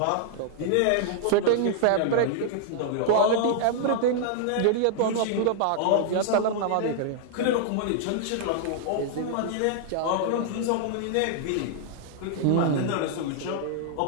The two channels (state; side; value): different; both; correlation -0.01